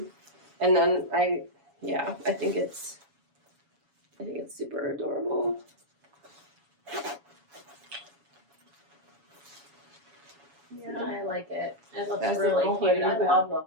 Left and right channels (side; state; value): left; late; 7.1 ms